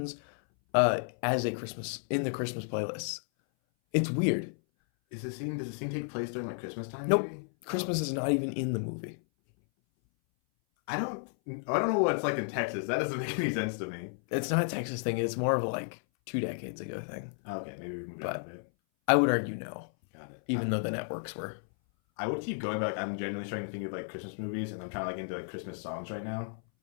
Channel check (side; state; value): right; silent; 56 dB below the other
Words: as a Christmas in the Christmas playlists. It's weird. Does the scene take place during like Christmas time? Nope. Maybe? Christmas is not even in the movie. I don't know what it's like in Texas. That doesn't make any sense to me. It's not a Texas thing. It's more of a like 2 decades ago thing. Okay, maybe we moved on a bit. I would argue no. Got it. Even though the networks were. I would keep going, but like, I'm genuinely trying to think of like Christmas movies, and I'm trying to like into like Christmas songs right now.